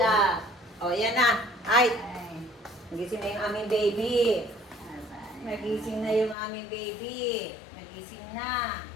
O, yan na. Ay, nagising na yung aming baby. Nagising na yung aming baby. Nagising na.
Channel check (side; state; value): right; drops out; at 6.4 s